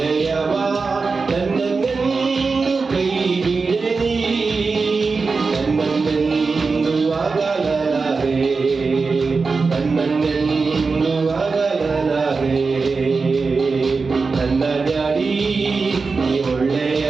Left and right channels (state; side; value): quieter; left; 4.4 dB